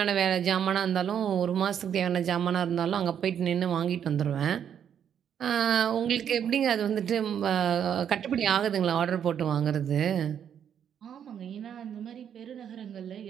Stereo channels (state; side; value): quieter; left; 8.7 dB